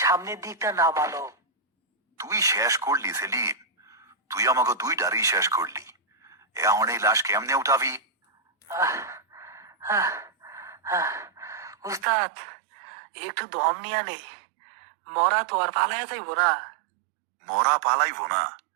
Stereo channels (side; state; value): left; drops out; at 12.1 s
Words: দিকটা নামালো। তুই শেষ করলি সেলিম, তুই আমাকে দুই ডারি শেষ করলি। এখন এই লাশ কেমনে উঠাবি? উস্তাদ, একটু দম নিয়া নেই, মরা তো আর পালাইয়া যাইব না। মরা পালাইব না,